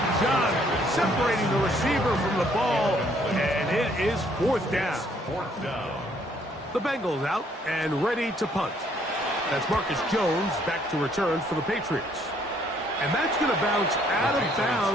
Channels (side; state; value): both; normal; correlation 0.65